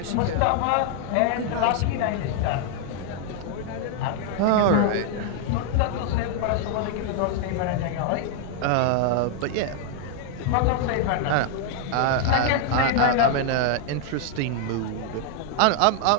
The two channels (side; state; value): both; different; correlation 0.00